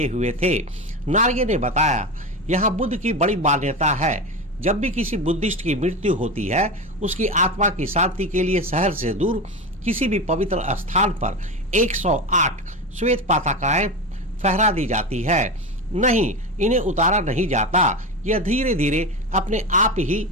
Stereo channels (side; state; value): both; normal; correlation 0.21